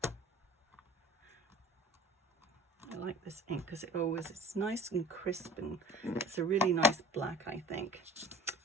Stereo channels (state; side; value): normal; both; correlation 0.41